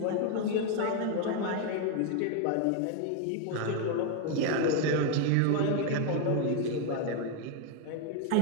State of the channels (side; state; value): both; different; correlation 0.01